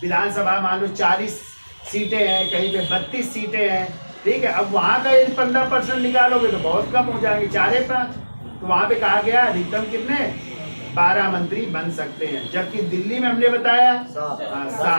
विधानसभा मान लो 40 सीटें हैं, कहीं पे 32 सीटें हैं। ठीक है, अब वहां का यदि 15% निकालोगे तो बहुत कम हो जाएंगे, 4-5। तो वहां पे कहा गया अधिकतम कितने? 12 मंत्री बन सकते हैं। जबकि दिल्ली में हमने बताया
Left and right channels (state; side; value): inverted; both; correlation -1.00